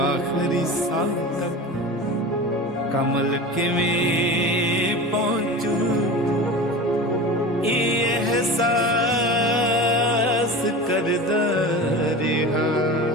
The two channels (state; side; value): normal; both; correlation 0.32